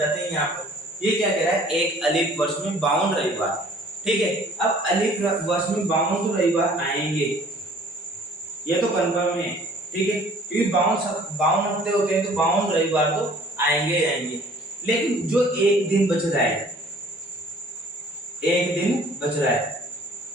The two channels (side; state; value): both; normal; correlation 0.53